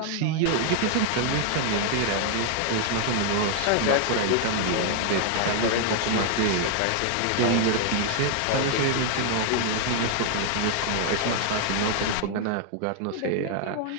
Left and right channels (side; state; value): both; different; correlation 0.00